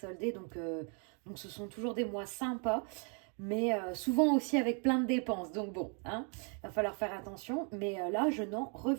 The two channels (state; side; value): quieter; left; 38.6 dB